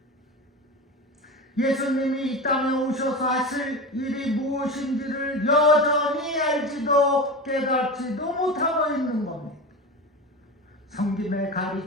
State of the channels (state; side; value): normal; both; correlation 0.26